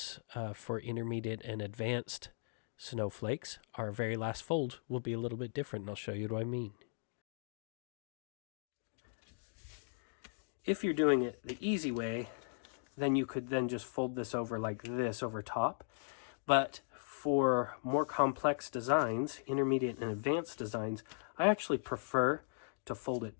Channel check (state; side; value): silent; right; digital silence